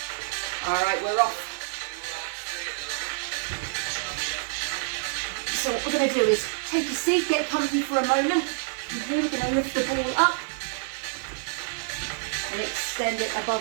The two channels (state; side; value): silent; left; 60 dB below the other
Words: Alright, we're off. So what we're going to do is take a seat, get comfy for a moment. And here we're going to lift the ball up and extend it